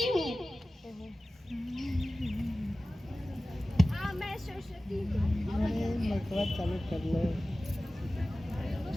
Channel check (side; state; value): both; normal; correlation 0.96